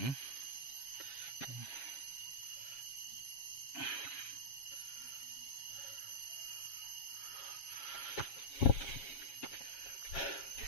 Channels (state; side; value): late; right; 7.3 ms